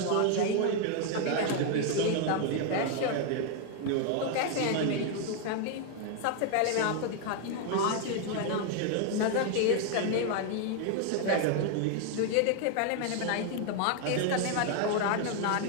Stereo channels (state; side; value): different; both; correlation 0.01